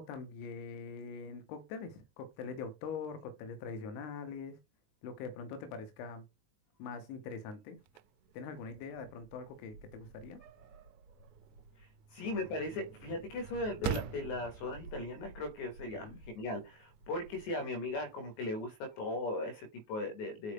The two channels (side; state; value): right; late; 19 ms